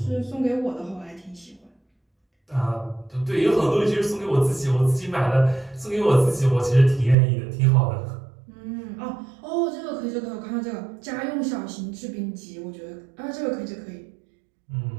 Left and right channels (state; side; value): drops out; left; at 7.2 s